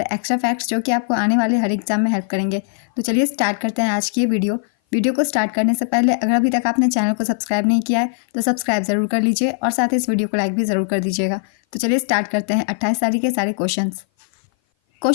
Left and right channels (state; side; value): silent; right; 57 dB below the other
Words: एक्स्ट्रा फैक्ट्स जो कि आपको आने वाले हर एग्जाम में हेल्प करेंगे। तो चलिए स्टार्ट करते हैं आज की ये वीडियो को स्टार्ट करने से पहले अगर अभी तक आपने चैनल को सब्सक्राइब नहीं किया है तो सब्सक्राइब जरूर कर लीजिए और साथ ही इस वीडियो को लाइक भी ज़रूर कर दीजिएगा। तो चलिए स्टार्ट करते हैं 28 तारीख के सारे क्वेश्चन।